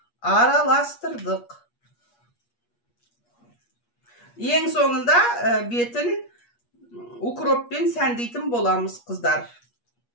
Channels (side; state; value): right; late; 8.4 ms